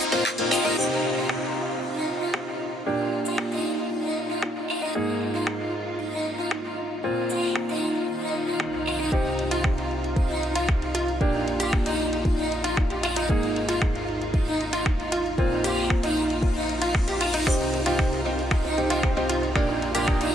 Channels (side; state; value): both; normal; correlation 0.76